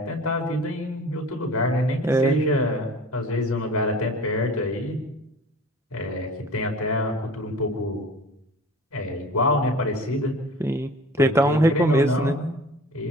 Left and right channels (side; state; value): both; normal; correlation 0.42